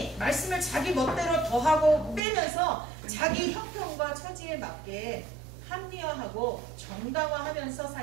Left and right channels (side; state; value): left; drops out; at 2.2 s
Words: 말씀을 자기 멋대로 더하고 빼면서 자기 형편과 처지에 맞게 합리화하고 정당화하면서